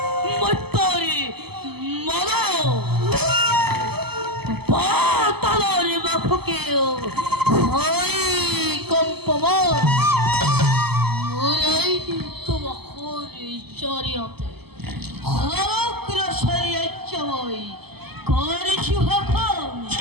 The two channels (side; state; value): left; late; 0.97 ms